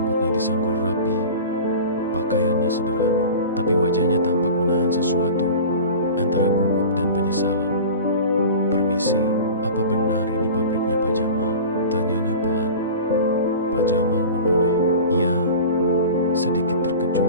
disanggul rapi, pakaiannya sederhana, tapi wajahnya tampak menahan sesuatu antara gugup dan penyesalan. "Permisi, apa benar ini pabriknya Pak Jamal?" tanyanya pelan. Pak Jamal menoleh. "Iya," sedikit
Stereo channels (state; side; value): inverted; both; correlation -0.36